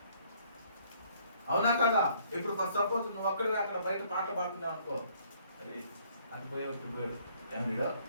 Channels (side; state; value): both; inverted; correlation -0.63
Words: అవునా కదా? ఇప్పుడు సపోజ్ నువ్వు అక్కడ బయట పాట పాడుతున్నావు అనుకో, అరే అది పోయాడు ఏం వీడో